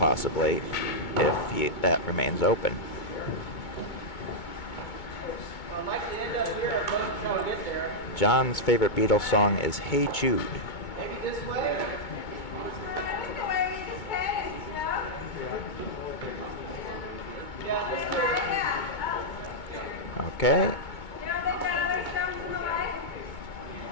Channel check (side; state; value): right; late; 2.2 ms